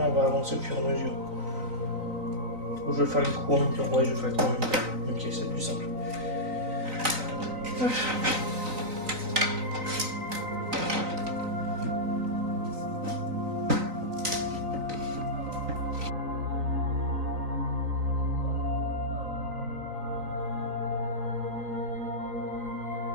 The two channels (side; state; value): left; late; 3.9 ms